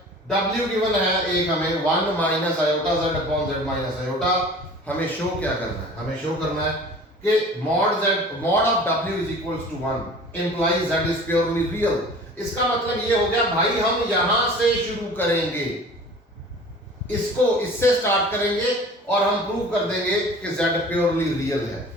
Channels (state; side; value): normal; both; correlation 0.43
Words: w given है एक हमें 1 minus iota z upon z minus iota. हमें शो क्या करना है, हमें शो करना है कि mod of w is equals to 1 implies z is purely real. इसका मतलब ये हो गया भाई हम यहां से शुरू करेंगे, इसको इससे स्टार्ट करेंगे और हम प्रूव कर देंगे कि z प्योरली रियल है,